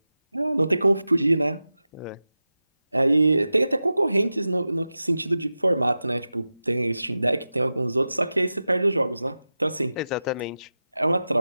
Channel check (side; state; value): both; inverted; correlation -0.94